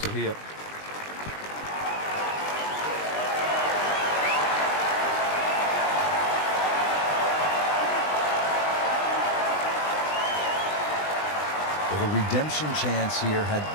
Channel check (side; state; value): right; late; 20 ms